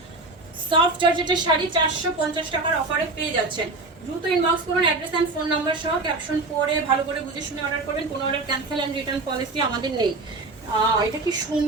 সফট জর্জেটের শাড়ি 450 টাকার অফারে পেয়ে যাচ্ছেন। দ্রুত ইনবক্স করুন, অ্যাড্রেস এন্ড ফোন নাম্বার সহ। ক্যাপশন পড়ে ভালো করে বুঝে শুনে অর্ডার করবেন। কোনো order cancel and return policy আমাদের নেই। এটা কি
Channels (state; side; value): quieter; left; 3.2 dB